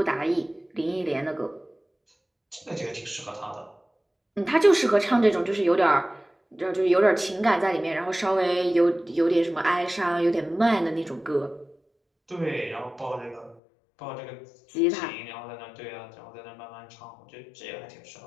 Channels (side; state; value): right; drops out; at 13.6 s